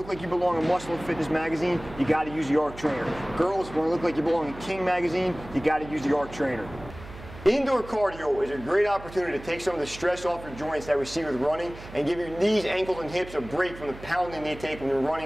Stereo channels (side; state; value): right; noise; hum, 15 dB below the sound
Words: like you belong in Muscle and Fitness magazine, you got to use the ARC Trainer. Girls, if you want to look like you belong in King magazine, you got to use the ARC Trainer. Indoor cardio is a great opportunity to take some of the stress off your joints that we see with running and give your knees, ankles, and hips a break from the pounding they take when you're